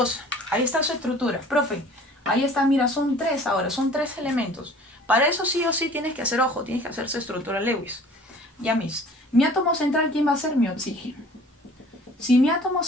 Ahí está su estructura. Profe, ahí está, mira, son 3 ahora, son 3 elementos. Para eso sí o sí tienes que hacer, ojo, tienes que hacer su estructura Lewis. Ya mis. Mi átomo central, ¿quién va a ser? Mi oxígeno. Si mi átomo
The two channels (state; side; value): normal; both; correlation 0.48